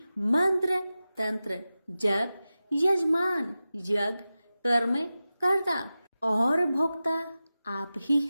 मंत्र, तंत्र, जप, यजमान, यज्ञ, कर्म कर्ता और भोक्ता आप ही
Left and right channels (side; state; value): both; inverted; correlation -0.95